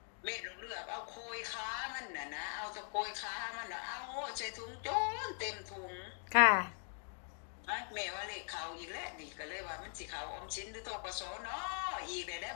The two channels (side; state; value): right; silent; 50 dB below the other